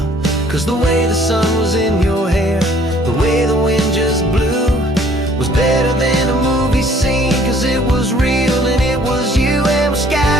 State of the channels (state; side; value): normal; both; correlation 0.58